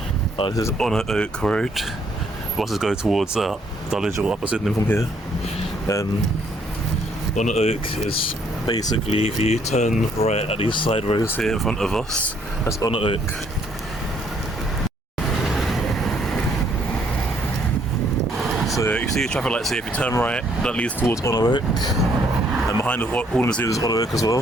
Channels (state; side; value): normal; both; correlation 0.67